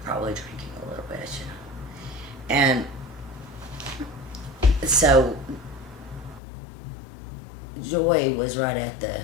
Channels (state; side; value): drops out; right; at 6.4 s